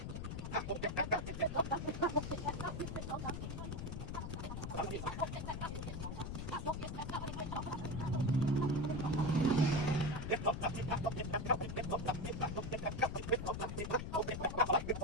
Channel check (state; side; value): noise; left; rumble, 5 dB below the sound